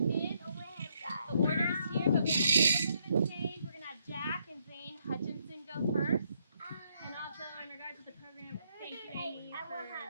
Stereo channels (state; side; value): inverted; both; correlation -0.74